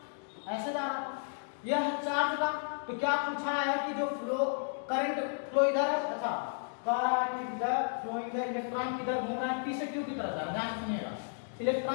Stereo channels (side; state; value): right; silent; digital silence